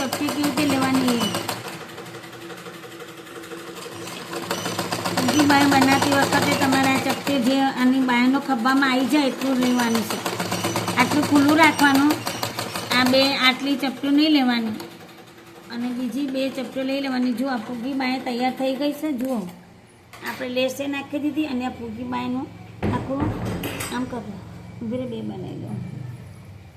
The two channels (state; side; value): identical; both; correlation 1.00